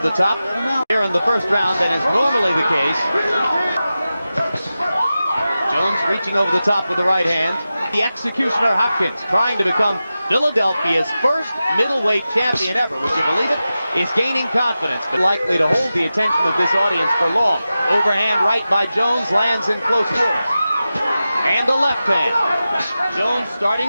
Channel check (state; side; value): inverted; both; correlation -0.94